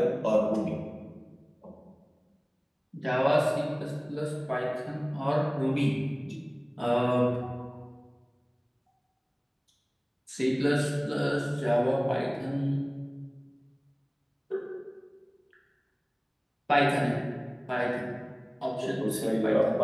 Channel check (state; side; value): identical; both; correlation 1.00